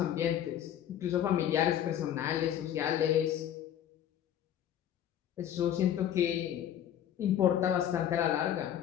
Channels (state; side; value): quieter; right; 10.5 dB